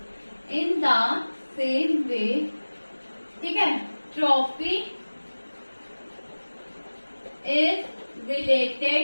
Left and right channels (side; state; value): both; inverted; correlation -1.00